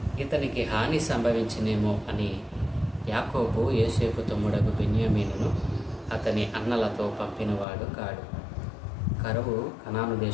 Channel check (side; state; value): right; drops out; at 7.7 s